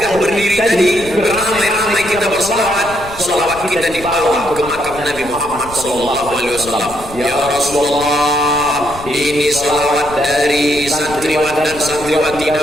berdiri tadi, beramai-ramai kita bersalawat, salawat kita dibawa ke makam Nabi Muhammad SAW. Ya Rasulullah, ini salawat dari santriwan dan santriwati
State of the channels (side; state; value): left; noise; rumble, 16 dB below the sound